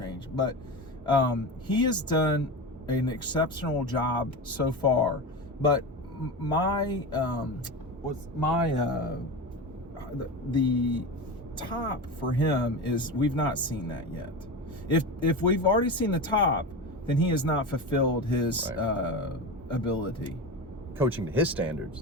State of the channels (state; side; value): normal; both; correlation 0.24